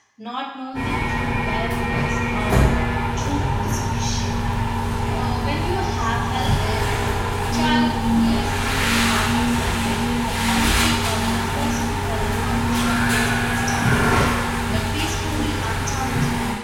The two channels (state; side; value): identical; both; correlation 1.00